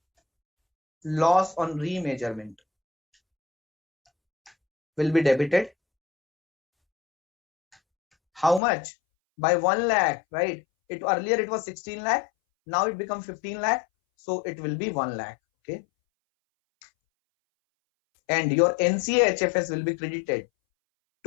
loss on remeasurement will be debited. How much? By 1 lakh, right? Earlier it was 16 lakh. Now it becomes 15 lakh. So it will be 1 lakh. Okay. And your NCA HFS will be credited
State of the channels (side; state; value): right; drops out; at 8.6 s